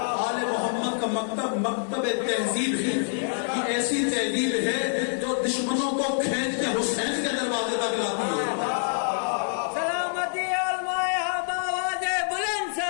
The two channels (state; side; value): silent; right; 60 dB below the other